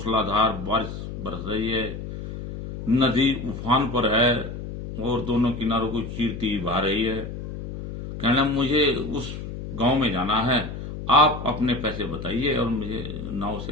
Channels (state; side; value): noise; left; hum, 8 dB below the sound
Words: बारिश बरस रही है, नदी उफान पर है और दोनों किनारों को चीरती बहा रही है। कहना मुझे उस गांव में जाना है, आप अपने पैसे बताइए और मुझे नाव